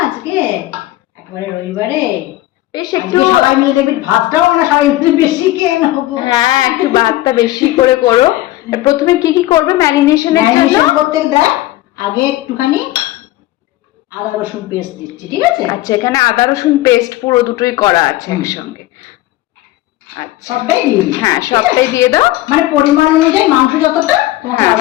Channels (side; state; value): right; quieter; 16.6 dB